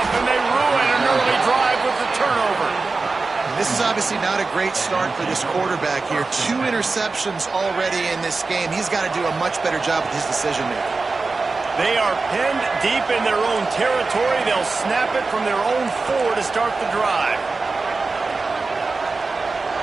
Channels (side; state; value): left; quieter; 3.9 dB